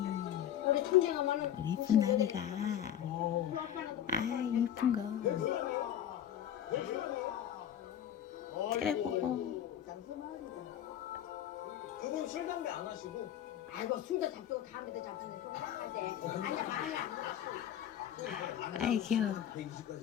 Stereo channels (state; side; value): quieter; right; 10.5 dB